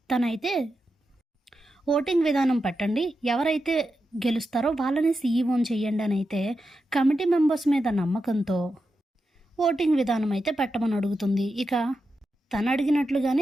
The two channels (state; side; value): normal; both; correlation 0.89